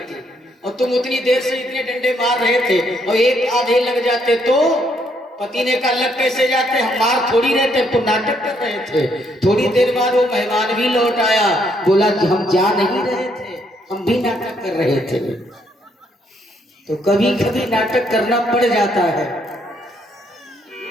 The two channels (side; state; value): both; normal; correlation 0.72